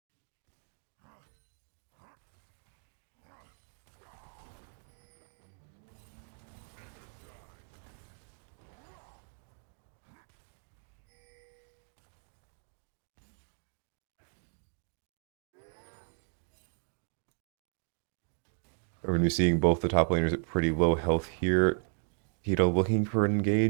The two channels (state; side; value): silent; left; 54 dB below the other